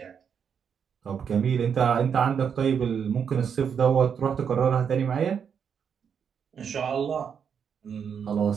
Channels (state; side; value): quieter; left; 7.3 dB